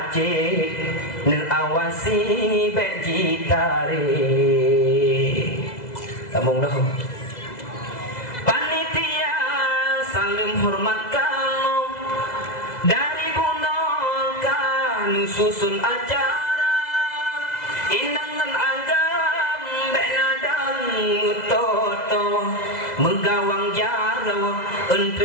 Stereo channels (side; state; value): right; late; 2.0 ms